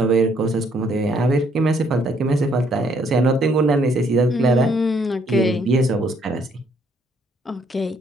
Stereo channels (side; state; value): both; normal; correlation 0.67